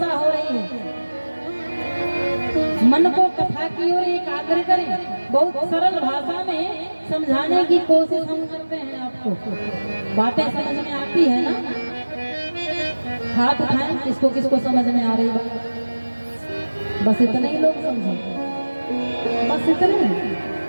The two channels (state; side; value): inverted; both; correlation -1.00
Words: हो रही है, मन को कथा की ओर एकाग्र करें। बहुत सरल भाषा में समझाने की कोशिश हम करते हैं आपको, बातें समझ में आती है ना? हाथ उठाएं किसको किसको समझ में आ रही बात, बस इतने ही लोग समझे, बस इतने।